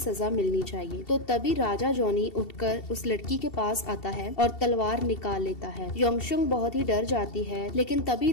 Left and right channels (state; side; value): late; right; 2.7 ms